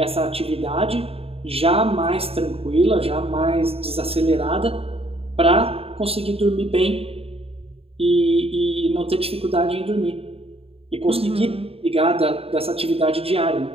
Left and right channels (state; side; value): late; left; 0.28 ms